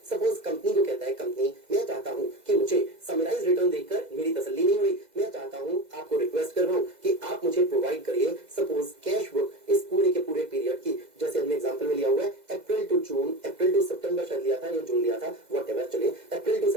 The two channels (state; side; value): late; left; 2.0 ms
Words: सपोज कंपनी को कहता है, कंपनी मैं चाहता हूं कि मुझे समराइज रिटर्न देखकर मेरी तसल्ली नहीं हुई, मैं चाहता हूं, आपको रिक्वेस्ट कर रहा हूं कि आप मुझे प्रोवाइड करिए सपोज कैश बुक इस पूरे के पूरे पीरियड की, जैसे हमने एग्जांपल में लिया हुआ है अप्रैल टू जून, अप्रैल टू सितंबर शायद लिया था या जून लिया था, व्हाटएवर, चलिए April to